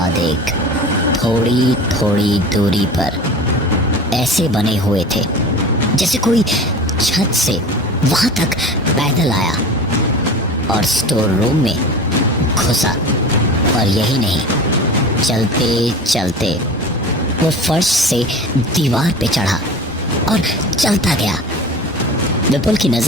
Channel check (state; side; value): normal; both; correlation 0.36